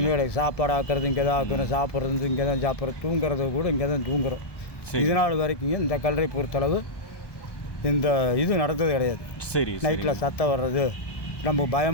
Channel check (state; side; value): late; right; 1.2 ms